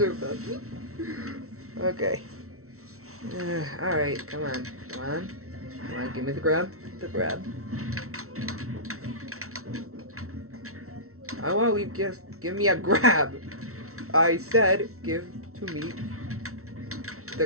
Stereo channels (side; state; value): left; late; 0.63 ms